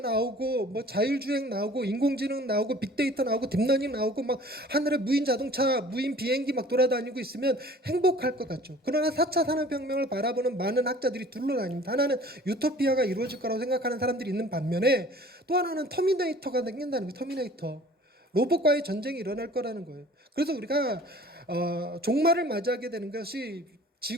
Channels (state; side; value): normal; both; correlation 0.48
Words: 나오고 뭐 자율주행 나오고 인공지능 나오고 빅데이터 나오고 딥러닝 나오고 막 하늘에 무인 자동차, 무인 비행기 막 돌아다니고 있으면 행복할 것 같죠. 그러나 4차 산업혁명을 바라보는 많은 학자들이 둘러다닙니다. 하나는 유토피아가 이루어질 거라고 생각하는 사람들이 있는 반면에 또 하나는 터미네이터가 생긴다는 거예요. 터미네이터. 로봇과의 전쟁이 일어날 거라는 거예요. 그래서 우리가 종말을 맞이하게 되는 것이